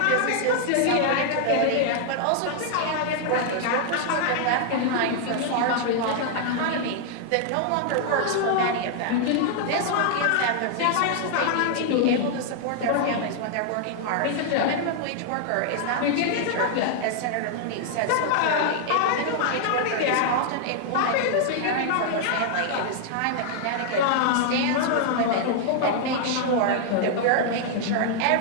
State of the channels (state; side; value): different; both; correlation -0.01